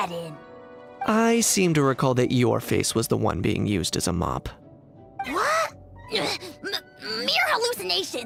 in? I seem to recall that your face was the one being used as a mop. What? Mere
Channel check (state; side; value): identical; both; correlation 1.00